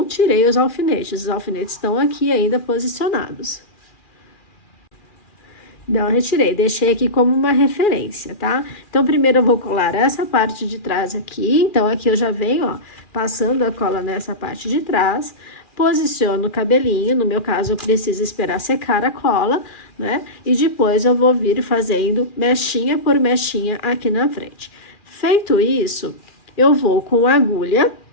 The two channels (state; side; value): late; right; 2.4 ms